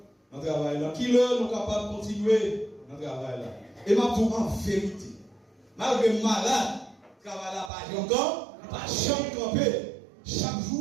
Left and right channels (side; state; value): left; drops out; at 7.7 s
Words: dans le travail là, qui l'heure nous sommes capables de continuer dans le travail là. Et ma tout en vérité, malgré malade, le travail là pas encore, il pas jamais camper. Chaque